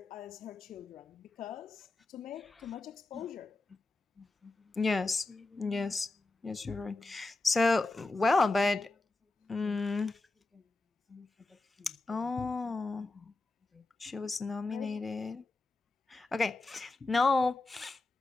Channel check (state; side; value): quieter; right; 3.2 dB